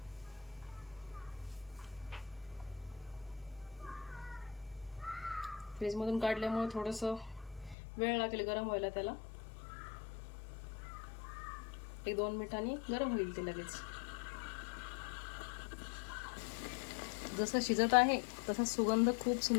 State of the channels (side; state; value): right; drops out; at 7.8 s